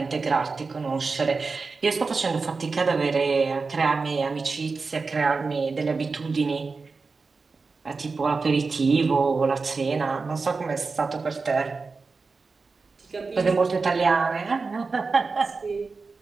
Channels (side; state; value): left; quieter; 4.3 dB